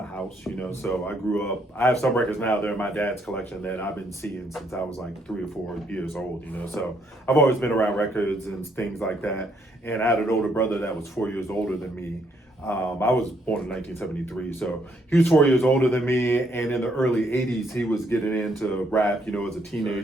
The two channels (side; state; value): both; normal; correlation 0.71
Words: house, you know, so I grew up, I have some records now, they're in my dad's collection that I've been seeing since I was like 3 or 4 years old, you know, so I've always been around records and things like that. And I had an older brother that was 4 years older than me. I was born in 1973, so he was 4 years older than me, and in the early 80s, he was getting into rap, you know, as a